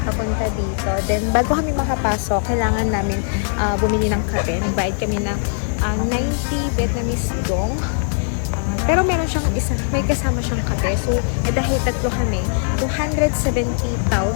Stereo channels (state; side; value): silent; right; 66 dB below the other